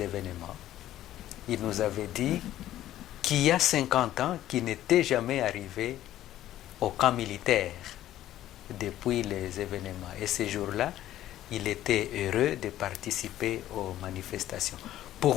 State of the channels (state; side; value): quieter; right; 13.2 dB